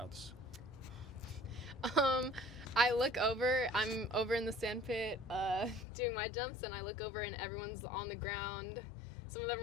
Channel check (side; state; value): right; drops out; at 5.9 s